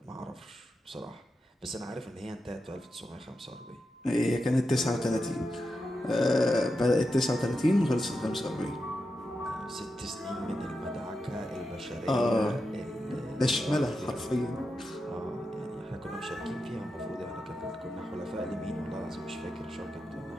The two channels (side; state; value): both; normal; correlation 0.88